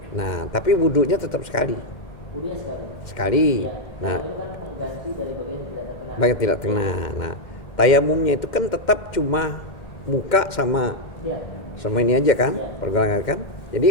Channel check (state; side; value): late; right; 2.1 ms